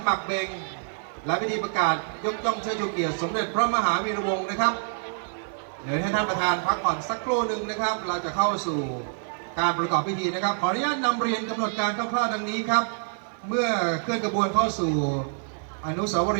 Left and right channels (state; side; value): silent; left; digital silence